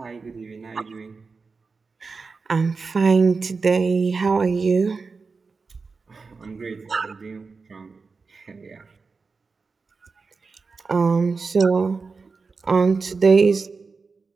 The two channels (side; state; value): left; quieter; 4.5 dB